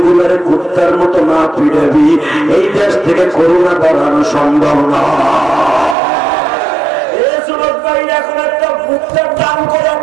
কুত্তার মতো না পিটাবি, এই দেশ থেকে করোনা বাড়ানো সম্ভব না। এই যুবক ভাইরা এখন একটা ভুট্টার দাম করে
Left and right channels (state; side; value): drops out; left; at 6.0 s